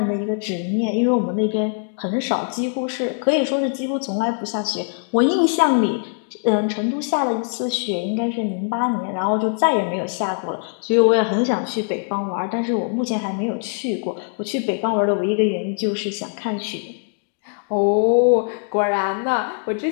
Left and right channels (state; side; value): silent; right; 64 dB below the other